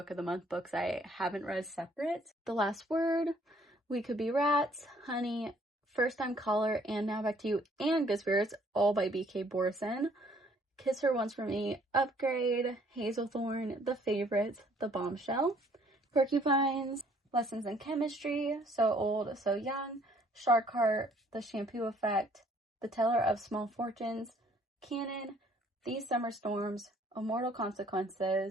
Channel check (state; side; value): normal; both; correlation 0.61